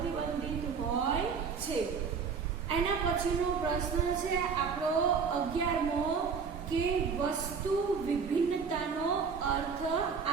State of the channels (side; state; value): left; quieter; 5.8 dB